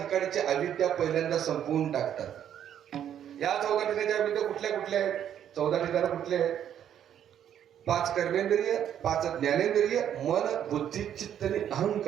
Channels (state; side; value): quieter; left; 9.9 dB